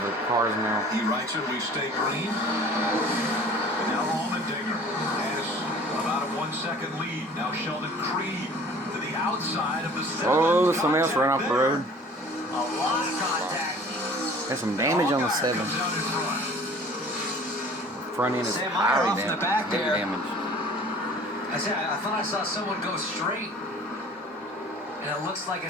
the cars now. He writes it, we stay green. And now Allmendinger has about a 1-second lead. Now Sheldon Creed to the outside of the 7. Oh, there's somebody else running off the road. A lot of contact. Got some damage on the 7. Front end is highly damaged. I thought I saw someone go straight, and it looks like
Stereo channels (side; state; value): both; normal; correlation 0.48